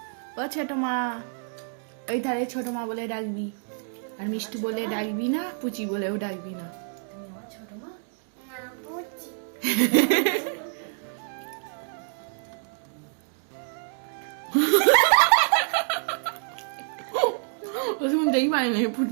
ও ছোট মা, ওই ধারে ছোট মা বলে ডাকবি, আর মিষ্টি বলে ডাকবি না, পুচি বলেও ডাকবি না। না বুঝছি ও শুনতেই পাইনি,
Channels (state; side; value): silent; left; 60 dB below the other